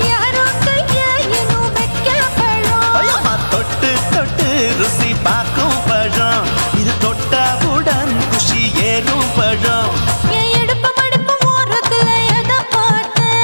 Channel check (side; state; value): both; inverted; correlation -1.00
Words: யாரோ கையா இன்னும் வைக்க பழம். ஐயம்மா தொட்டு தொட்டு ருசி பார்க்கும் பழம். இது தொட்டவுடன் குஷி ஏறும் பழம். என் இடுப்பு மடிப்பு ஓரத்துல எதை பார்த்த?